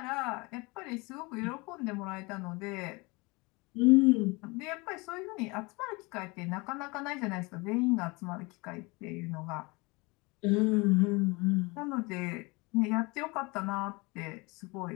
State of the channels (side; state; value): right; quieter; 26.1 dB